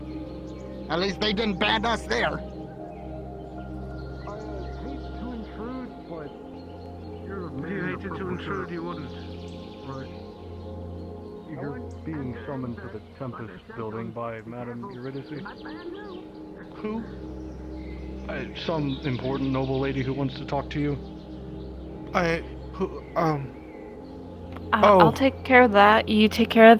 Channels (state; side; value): identical; both; correlation 1.00